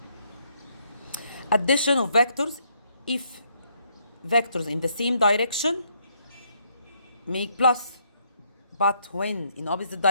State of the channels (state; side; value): inverted; both; correlation -0.72